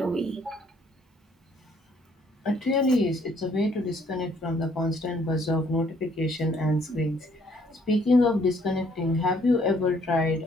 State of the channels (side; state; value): both; normal; correlation 0.64